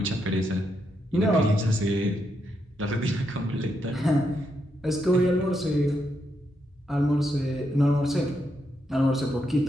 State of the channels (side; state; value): both; normal; correlation 0.81